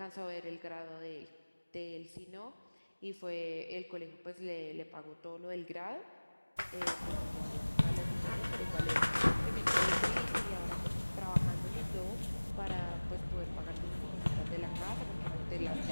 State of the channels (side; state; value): both; inverted; correlation -1.00